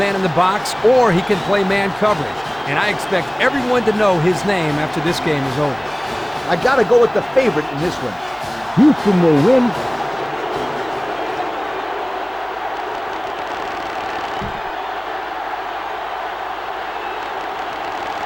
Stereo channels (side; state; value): left; noise; hum, 27 dB below the sound